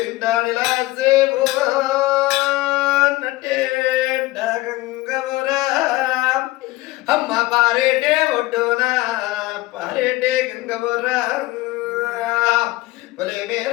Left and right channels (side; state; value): right; quieter; 19.1 dB